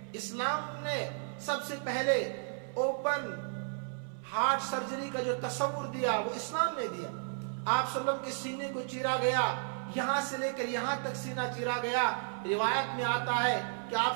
اسلام نے سب سے پہلے اوپن ہارٹ سرجری کا جو تصور دیا وہ اسلام نے دیا۔ آپ صلی اللہ علیہ وسلم کے سینے کو چیرا گیا، یہاں سے لے کر یہاں تک سینہ چیرا گیا۔ روایت میں آتا ہے کہ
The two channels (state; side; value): silent; left; 56 dB below the other